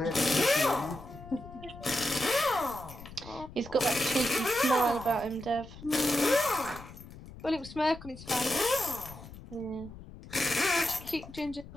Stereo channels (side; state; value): left; noise; rumble, 16 dB below the sound